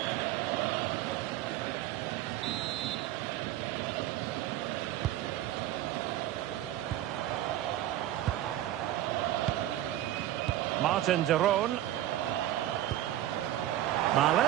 Martin de Roon.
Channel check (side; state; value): left; quieter; 13.5 dB